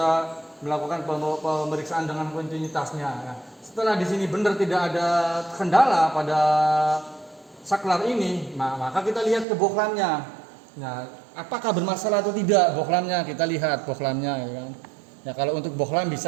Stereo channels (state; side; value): drops out; left; at 9.5 s